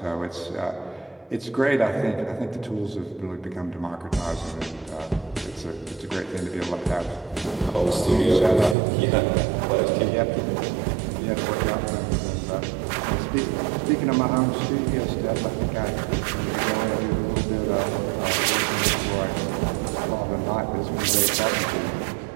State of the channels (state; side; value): drops out; left; at 8.8 s